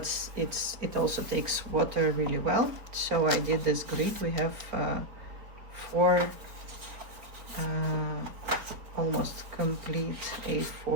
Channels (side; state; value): left; late; 4.3 ms